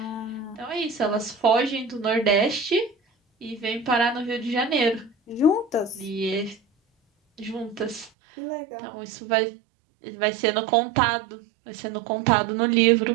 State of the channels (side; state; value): left; drops out; at 8.1 s